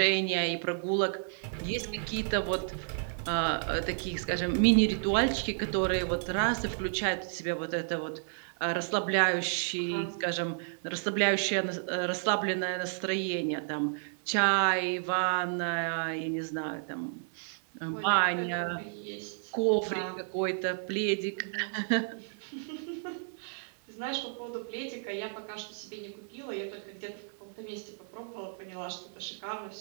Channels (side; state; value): left; silent; 57 dB below the other